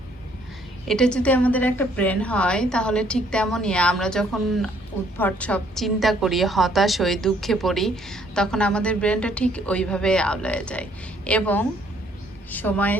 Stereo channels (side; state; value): both; normal; correlation 0.65